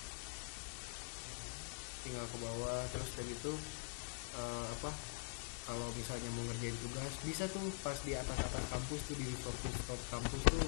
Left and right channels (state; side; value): silent; right; digital silence